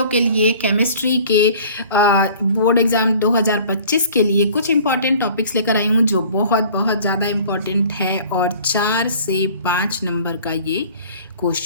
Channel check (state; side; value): inverted; both; correlation -0.48